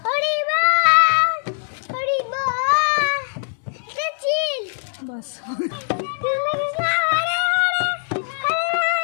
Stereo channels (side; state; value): right; silent; digital silence